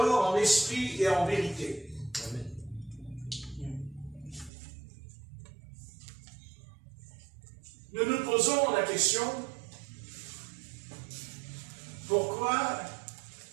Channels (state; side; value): drops out; left; at 4.5 s